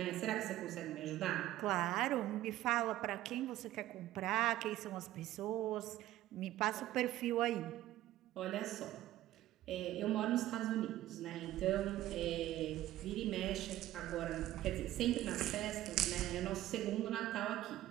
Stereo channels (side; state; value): left; quieter; 14.5 dB